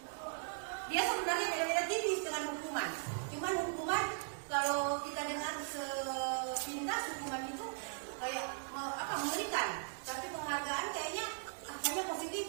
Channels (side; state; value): left; silent; 52 dB below the other